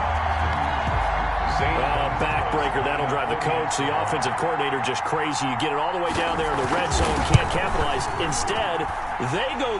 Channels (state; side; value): identical; both; correlation 1.00